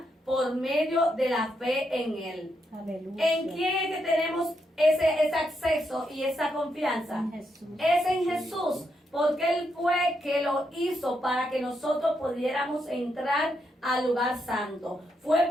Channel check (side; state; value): both; normal; correlation 0.80